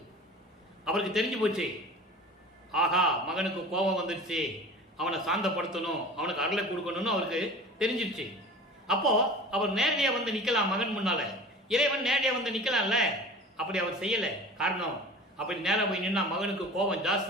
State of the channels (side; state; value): both; normal; correlation 0.39